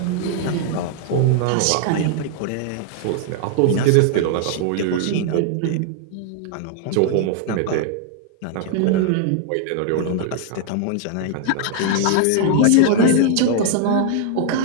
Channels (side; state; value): both; different; correlation 0.00